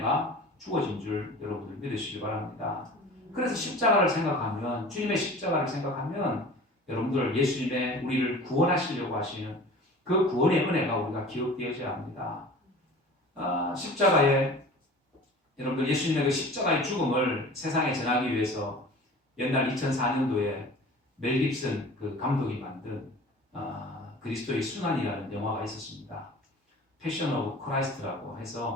주어진 줄 여러분들 믿으시기 바랍니다. 그래서 십자가를 생각하면 주님의 십자가를 생각하면 여러분들 예수님의 우리를 구원하시려고 하시는 그 구원의 은혜가 우리가 기억되어져야 합니다. 십자가에 여러분들 예수님의 그 십자가의 죽음을 세상에 전하기 위해서 옛날 2004년도에 멜 깁슨 그 감독이 만든 그리스도의 순환이라는 영화가 있었습니다. 패션 오브 크라이스트라고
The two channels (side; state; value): both; normal; correlation 0.41